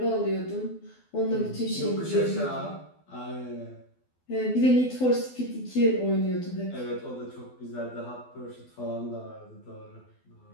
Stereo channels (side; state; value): right; late; 12 ms